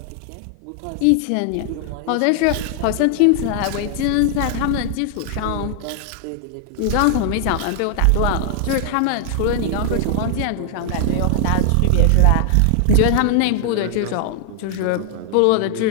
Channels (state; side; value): different; both; correlation 0.00